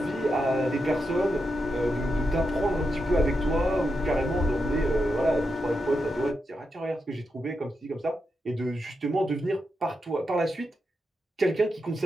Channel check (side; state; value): both; normal; correlation 0.86